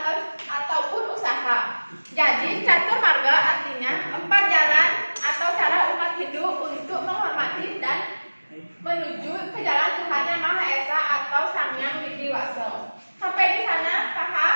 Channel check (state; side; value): inverted; both; correlation -1.00